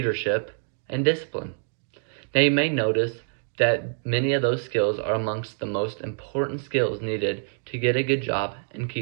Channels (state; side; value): silent; left; 61 dB below the other